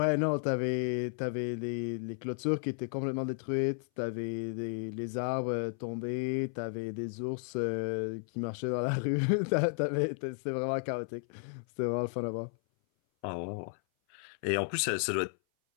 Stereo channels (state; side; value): silent; right; 55 dB below the other